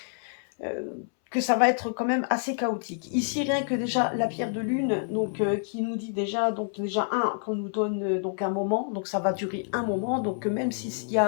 que ça va être quand même assez chaotique. Ici, rien que déjà la pierre de lune, donc qui nous dit déjà qu'on nous donne donc un moment, donc ça va durer un moment, donc même s'il y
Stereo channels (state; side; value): silent; right; 60 dB below the other